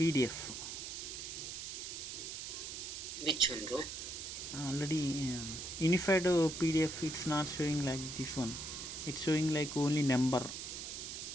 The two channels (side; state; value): right; noise; hiss, 7 dB below the sound